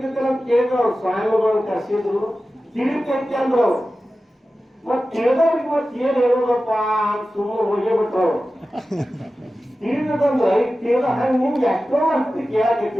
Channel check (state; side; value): normal; both; correlation 0.94